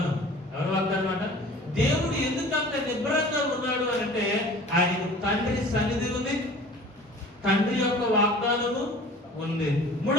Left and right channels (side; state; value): both; normal; correlation 0.44